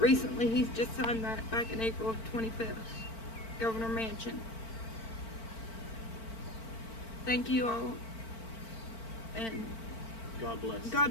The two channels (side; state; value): right; late; 4.5 ms